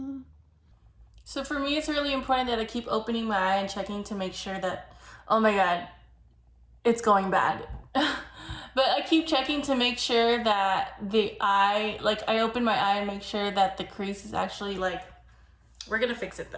So for me, it's really important that I keep opening my eye and checking to make sure that, oh my God, it's going bad. But I keep checking to make sure that the eye, like I open my eye and make sure that the crease is actually like, we're gonna fix it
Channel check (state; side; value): identical; both; correlation 1.00